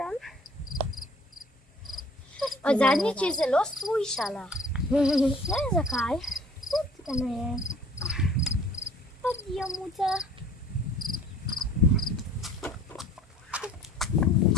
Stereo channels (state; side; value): normal; both; correlation 0.51